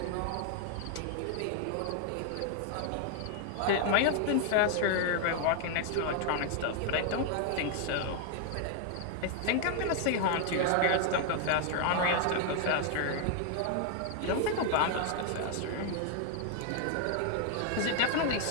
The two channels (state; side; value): different; both; correlation 0.00